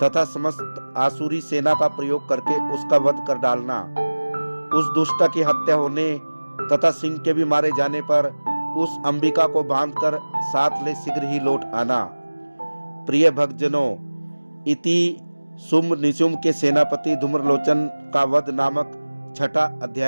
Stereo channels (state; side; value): inverted; both; correlation -1.00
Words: समस्त आसुरी सेना का प्रयोग करके उसका वध कर डालना। उस दुष्ट की हत्या होने तथा सिंह के भी मारे जाने पर उस अंबिका को बांधकर साथ ले शीघ्र ही लौट आना। प्रिय भक्तजनों, इति शुंभ निशुंभ के सेनापति धूम्रलोचन का वध नामक 6वां